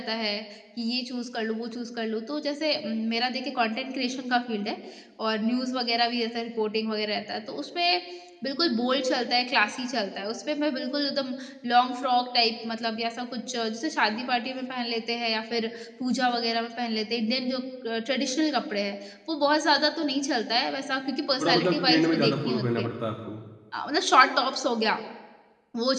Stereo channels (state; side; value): identical; both; correlation 1.00